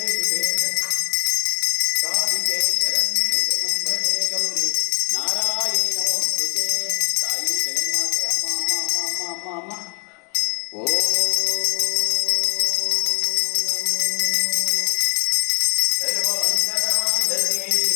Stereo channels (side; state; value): right; quieter; 38.8 dB